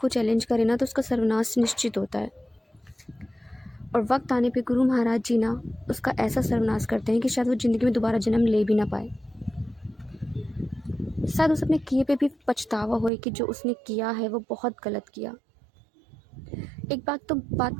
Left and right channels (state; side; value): drops out; left; at 13.1 s